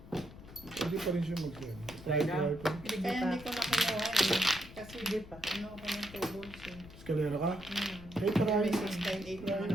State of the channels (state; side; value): noise; left; rumble, 17 dB below the sound